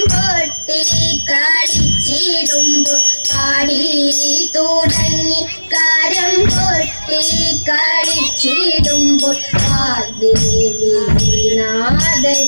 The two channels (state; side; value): inverted; both; correlation -1.00